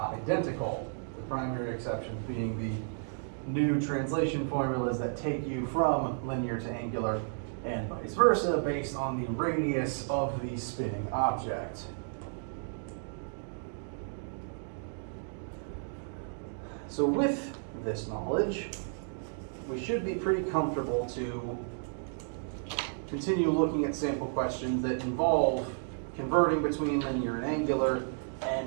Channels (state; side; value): silent; left; digital silence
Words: The primary exception being the new translation formulas that take you from linear to angular and vice versa based on the radius of the spinning object. So with this knowledge, we should be pretty comfortable to continue looking at sample questions that involve converting between linear and angular